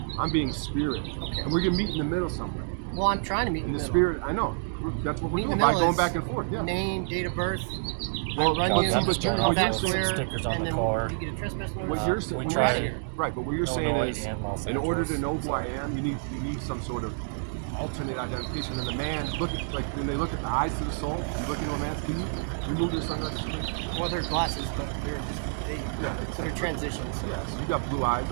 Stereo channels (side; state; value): left; silent; digital silence